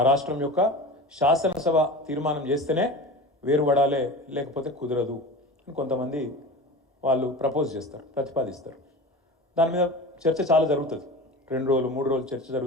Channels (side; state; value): both; normal; correlation 0.32